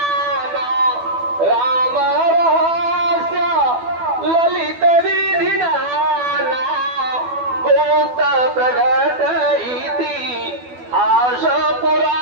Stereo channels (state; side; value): late; left; 12 ms